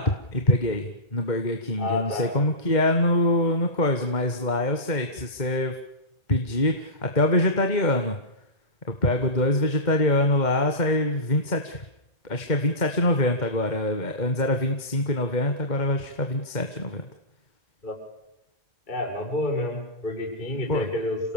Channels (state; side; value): late; right; 2.1 ms